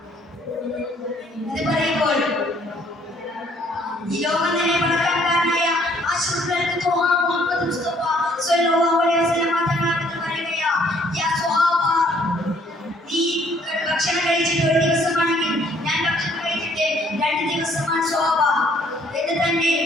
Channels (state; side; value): normal; both; correlation 0.63